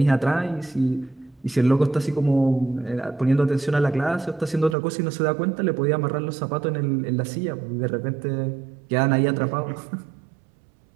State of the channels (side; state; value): left; drops out; at 4.8 s